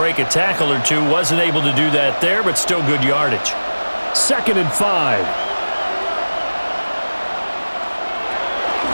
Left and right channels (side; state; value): both; inverted; correlation -1.00